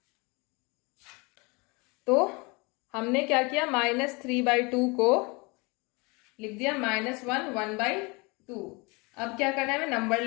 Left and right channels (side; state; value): right; quieter; 27.8 dB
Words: तो हमने क्या किया? -3/2 को लिख दिया -1 1/2. अब क्या करना है? हमें नंबर